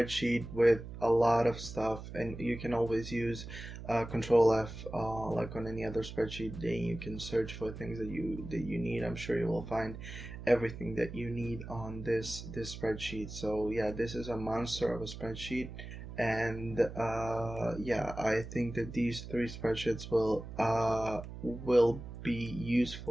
with a lot of stuff, and you can always use Control F like on any other spreadsheet. Then you can search for things that you need. I'm sure you will find everything that you need on this spreadsheet. So yeah, this is a monster of a spreadsheet, and yeah, I think that these 3 spreadsheets will be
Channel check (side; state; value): right; noise; hum, 11 dB below the sound